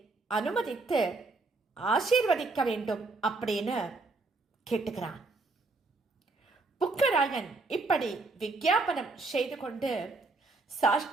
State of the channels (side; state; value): left; quieter; 3.5 dB